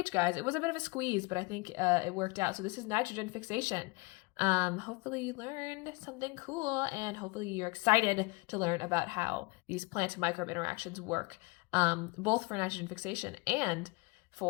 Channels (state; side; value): quieter; right; 26.3 dB